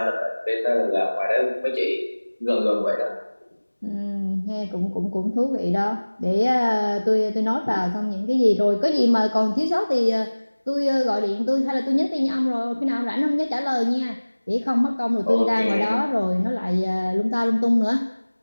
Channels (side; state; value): both; inverted; correlation -1.00